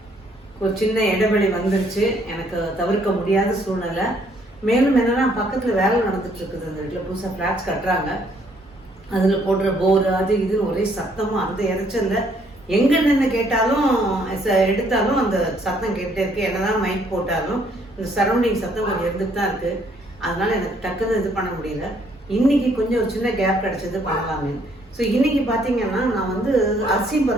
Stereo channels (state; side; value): normal; both; correlation 0.66